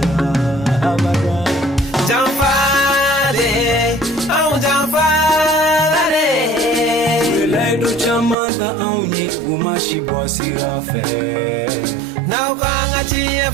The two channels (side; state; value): left; drops out; at 8.3 s